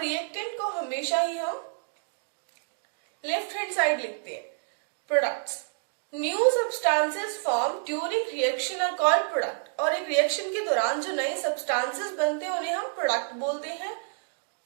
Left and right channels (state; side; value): silent; left; digital silence